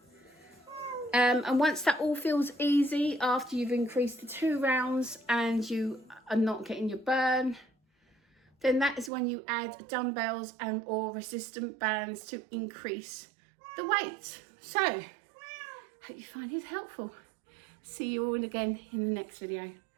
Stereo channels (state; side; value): drops out; left; at 9.1 s